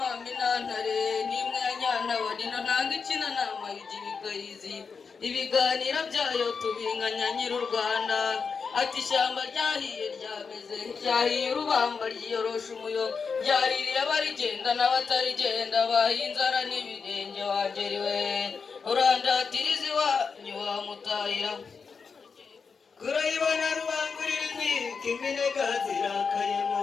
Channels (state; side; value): quieter; right; 5.4 dB